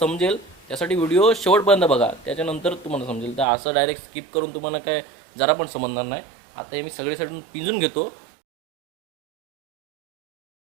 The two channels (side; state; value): left; drops out; at 3.5 s